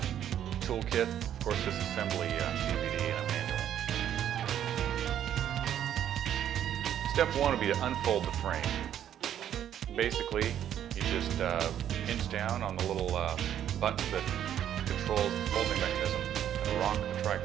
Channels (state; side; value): quieter; left; 10.4 dB